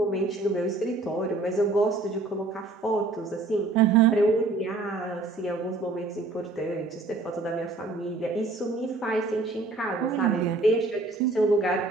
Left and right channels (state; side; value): quieter; left; 3.4 dB